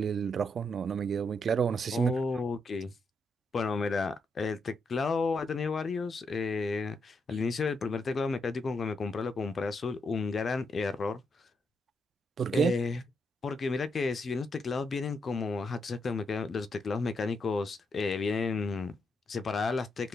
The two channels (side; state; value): both; normal; correlation 0.79